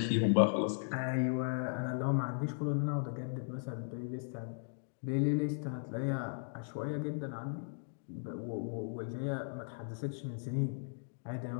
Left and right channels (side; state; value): right; silent; digital silence